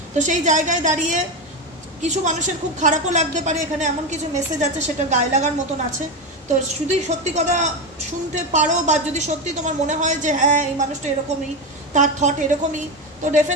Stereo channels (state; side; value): normal; both; correlation 0.15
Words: তো সেই জায়গায় দাঁড়িয়ে কিছু মানুষের খুব খারাপও লাগতে পারে, এখানে এমন কিছু মেসেজ আছে সেটা গায়ে লাগার মতন আছে। তো শুধু সত্যি কথা শুনতে পারো, বা যদি সত্যি তোমার মনে হয় যে হ্যাঁ এই মানুষটা এরকমই, তার থট এরকমই, তো